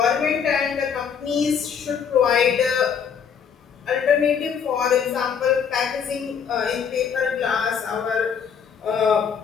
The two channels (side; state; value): right; quieter; 7.1 dB